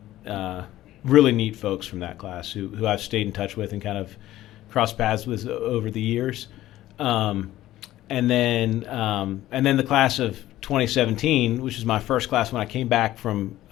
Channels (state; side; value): quieter; right; 14.7 dB